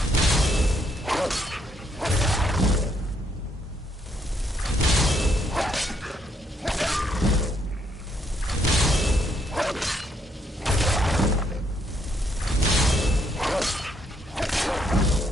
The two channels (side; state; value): both; normal; correlation 0.72